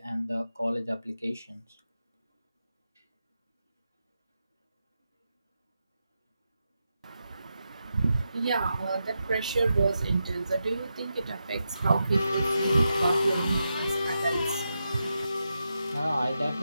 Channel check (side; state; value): both; inverted; correlation -0.87